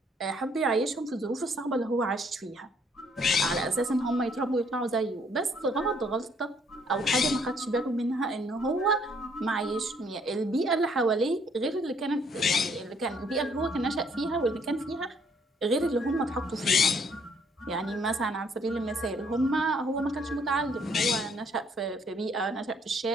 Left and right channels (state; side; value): normal; both; correlation 0.65